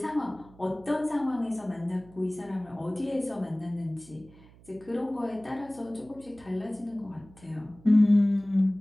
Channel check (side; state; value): right; noise; hum, 24 dB below the sound